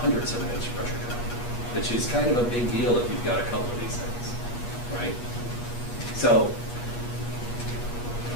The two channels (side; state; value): right; late; 8.4 ms